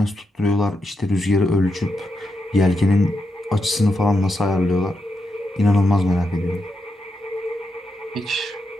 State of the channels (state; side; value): normal; both; correlation 0.84